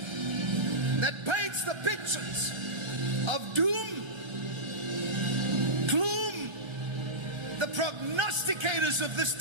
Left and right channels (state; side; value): late; left; 1.3 ms